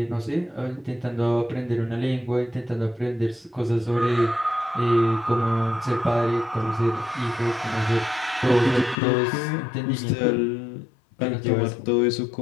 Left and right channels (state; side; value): drops out; right; at 9.0 s